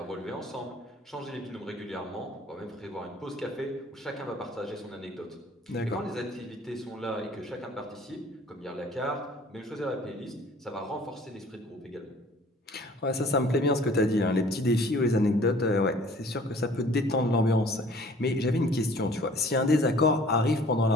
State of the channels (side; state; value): both; normal; correlation 0.52